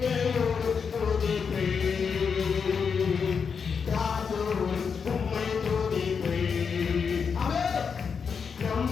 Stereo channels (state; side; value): quieter; right; 6.1 dB